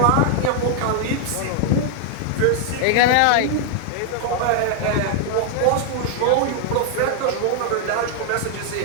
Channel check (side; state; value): both; different; correlation 0.00